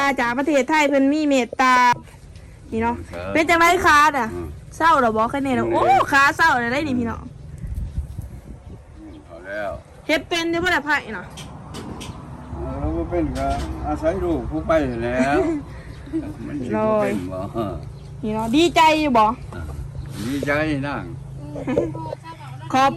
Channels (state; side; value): identical; both; correlation 1.00